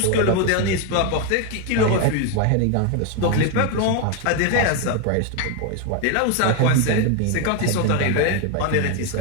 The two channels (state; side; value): different; both; correlation 0.01